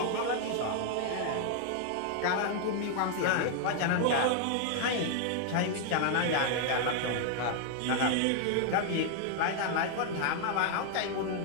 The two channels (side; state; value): both; different; correlation 0.00